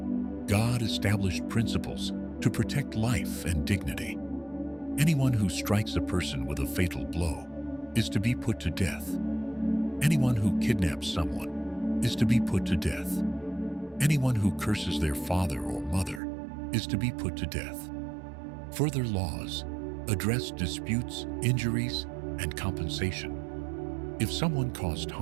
God established principles to protect life and dignity. Anyone who strikes a person with a fatal blow is to be put to death. Anyone who kidnaps someone is to be put to death. Anyone who curses their father or mother is to be put to death. Further laws address disputes, injuries, and compensation. If someone caused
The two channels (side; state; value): left; drops out; at 16.2 s